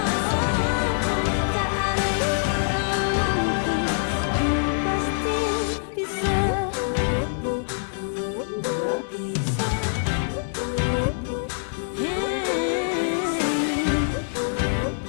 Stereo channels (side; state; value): right; silent; digital silence